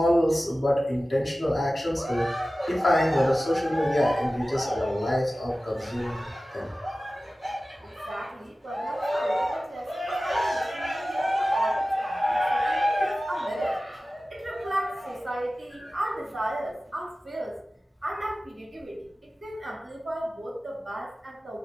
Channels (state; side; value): normal; both; correlation 0.96